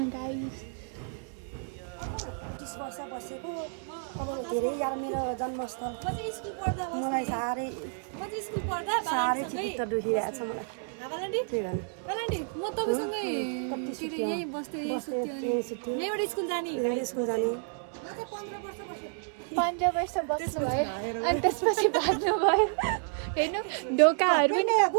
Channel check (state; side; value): silent; left; 57 dB below the other